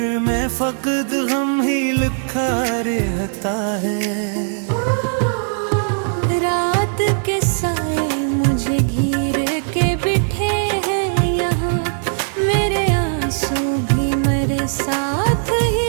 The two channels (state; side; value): silent; left; digital silence